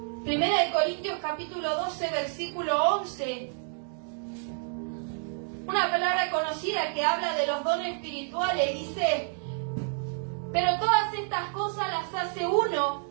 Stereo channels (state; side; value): silent; left; 59 dB below the other